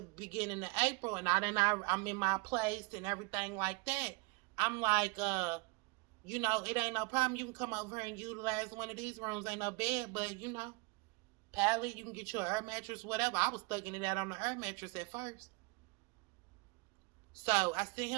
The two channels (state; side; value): quieter; left; 28.6 dB